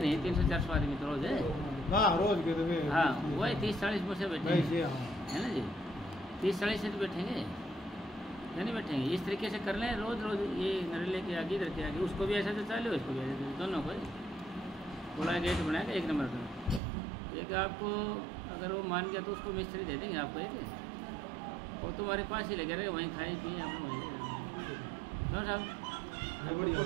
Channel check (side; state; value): left; drops out; at 16.8 s